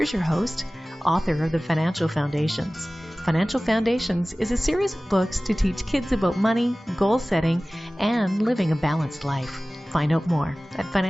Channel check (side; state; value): both; normal; correlation 0.98